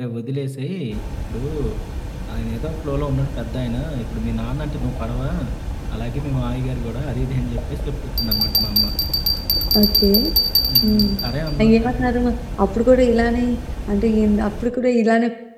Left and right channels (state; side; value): identical; both; correlation 1.00